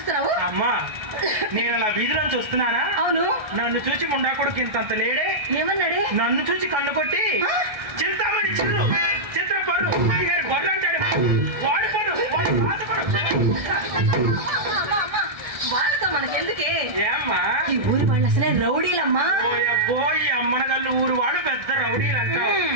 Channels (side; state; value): left; late; 1.6 ms